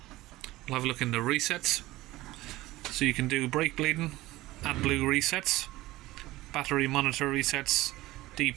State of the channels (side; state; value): left; quieter; 18.0 dB